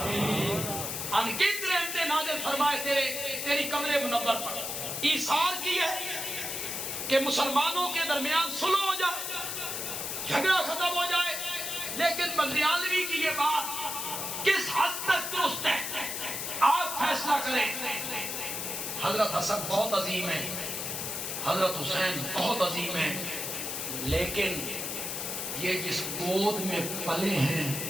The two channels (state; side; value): noise; left; hiss, 3 dB below the sound